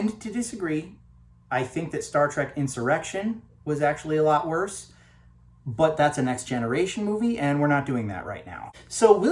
to disagree. I think that Star Trek Insurrection was actually a lot worse, but that's a Next Generation movie, and we're not doing that right now. So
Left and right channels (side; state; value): both; identical; correlation 1.00